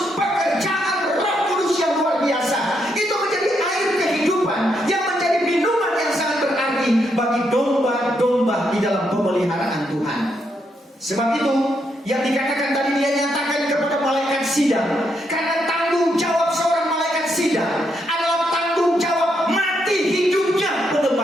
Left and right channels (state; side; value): normal; both; correlation 0.78